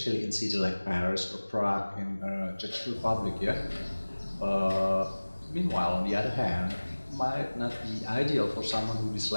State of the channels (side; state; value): both; inverted; correlation -1.00